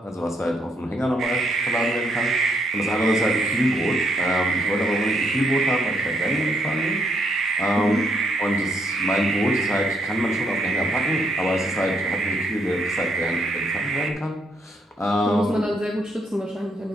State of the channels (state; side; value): normal; both; correlation 0.73